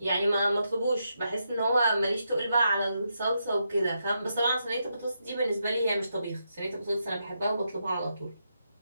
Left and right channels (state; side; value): inverted; both; correlation -0.82